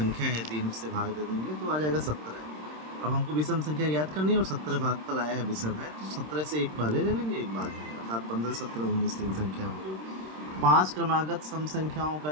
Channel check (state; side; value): late; left; 26 ms